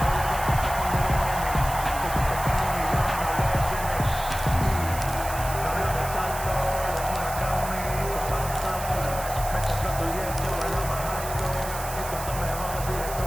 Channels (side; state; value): right; noise; hiss, 10 dB below the sound